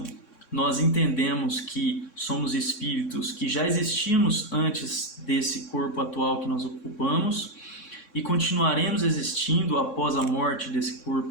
nós entendemos que somos espíritos que já existimos antes desse corpo atual que nós ocupamos e continuaremos existindo após a morte desse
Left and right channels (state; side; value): late; right; 3.6 ms